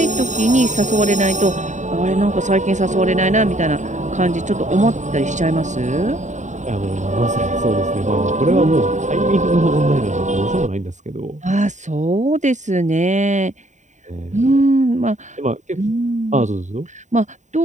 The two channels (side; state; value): left; late; 0.35 ms